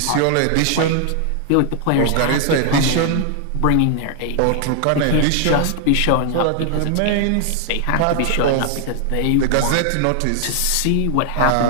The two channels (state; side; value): different; both; correlation 0.00